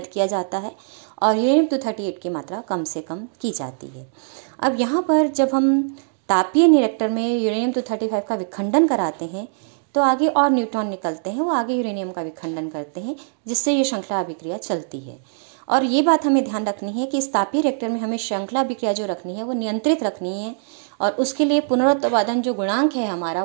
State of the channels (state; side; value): silent; left; digital silence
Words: किया जाता है, और यूरेनियम 238 की मात्रा कम से कम की जाती है। अब यहाँ पर जब हम तापीय रिएक्टर में यूरेनियम 235 का विखंडन कराते हैं तो आगे और न्यूट्रॉन निकलते हैं, वो आगे यूरेनियम का विखंडन करते हैं, जिससे ये श्रृंखला अभिक्रिया चलती है। और ये बात हमें ध्यान रखनी है कि इस तापीय रिएक्टर में हमें श्रृंखला अभिक्रिया जो रखनी है वो नियंत्रित रखनी है, और उसके लिए पुनरुत्पादन जो गुणांक है हमारा